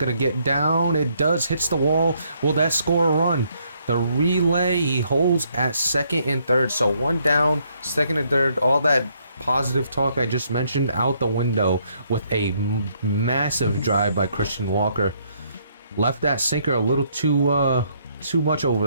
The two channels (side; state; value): both; inverted; correlation -0.70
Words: get down? It does. Hits the wall. Will that score a run? The relay, he holds at second and third, so 1 down, second and third, all that positive talk I just mentioned out the window with a massive drive by Christian Walker. Left that sinker a little too much over